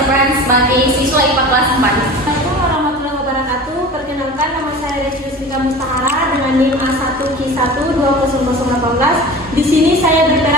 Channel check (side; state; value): both; normal; correlation 0.37